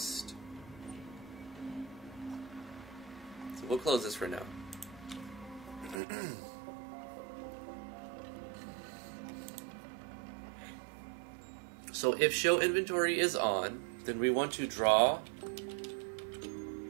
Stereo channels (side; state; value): left; drops out; at 6.0 s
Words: So we'll close this for now. So if show inventory is on, then we want to draw